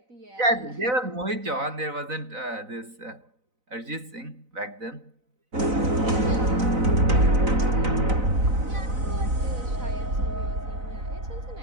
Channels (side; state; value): left; late; 4.0 ms